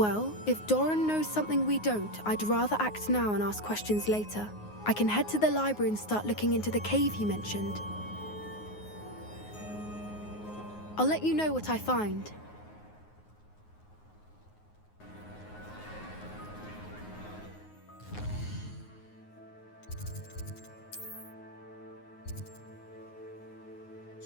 if Doran knows something we don't, I'd rather act now and ask questions later. I can head to the library and start looking into the cave he mentioned. I'll let you know what I find.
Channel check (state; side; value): late; right; 9.5 ms